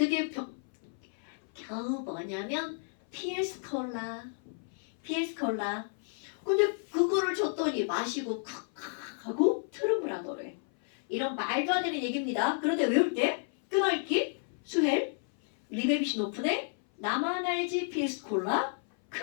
겨우 뭐냐면 PS 콜라. 근데 그거를 줬더니 마시고 칵칵 하고 트름을 하더래. 이런 말도 안 되는 얘기입니다. 그런데 외울 때 끊어읽기, 수헬, 리베비시 노프네, 나만 알지 PS 콜라,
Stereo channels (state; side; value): silent; right; 57 dB below the other